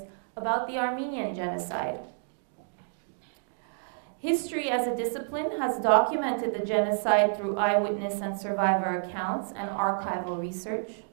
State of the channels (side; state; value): left; silent; digital silence